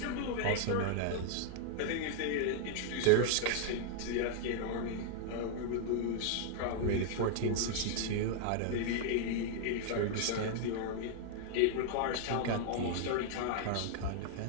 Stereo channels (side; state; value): both; different; correlation -0.01